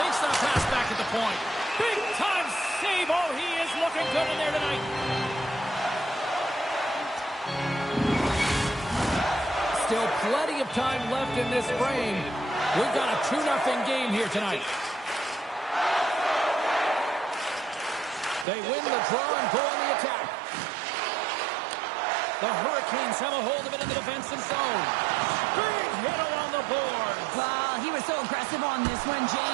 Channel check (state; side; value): drops out; left; at 18.4 s